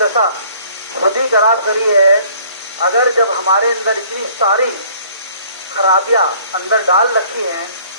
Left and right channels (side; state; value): both; inverted; correlation -0.56